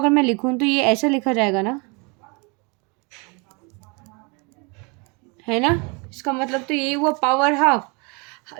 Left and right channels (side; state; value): left; quieter; 31.2 dB